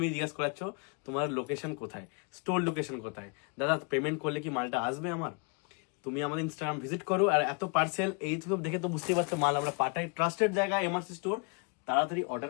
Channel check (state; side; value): quieter; right; 35.8 dB